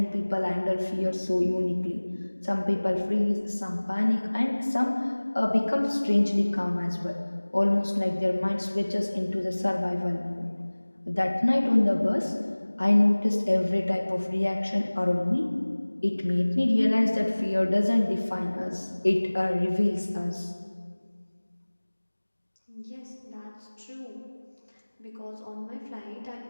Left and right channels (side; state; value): both; inverted; correlation -1.00